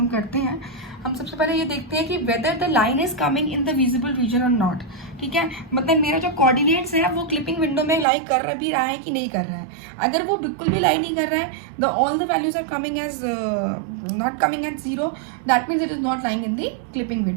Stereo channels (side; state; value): left; drops out; at 8.1 s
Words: करते हैं, हम सबसे पहले ये देखते हैं कि whether the line is coming in the visible region और नॉट. ठीक है, मतलब मेरा जो कोऑर्डिनेट्स है वो क्लिपिंग विंडो में लाई कर भी रहा है कि नहीं कर रहा है. अगर वो बिल्कुल भी लाई नहीं कर रहा है, the all the values are coming as not coming as 0, that means it is not lying in the clipping